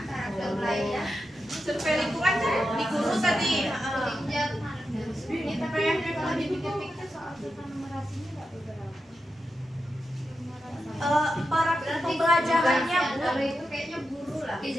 karakter belajar. Survei lingkungan kan di guru tadi. Ini tapi yang kalau dipikir-pikir soal numerasinya nggak beberapa. Para pembelajarannya Bu. Kalau itu kayaknya guru lah.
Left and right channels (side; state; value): both; normal; correlation 0.89